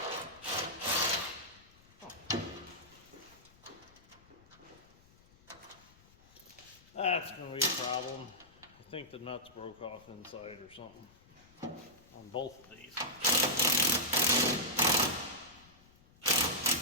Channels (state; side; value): noise; left; rumble, 27 dB below the sound